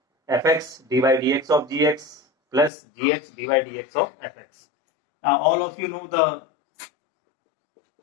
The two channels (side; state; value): right; drops out; at 2.7 s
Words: fx dy dx of gx plus gx dy dx of fx. Now all of you know the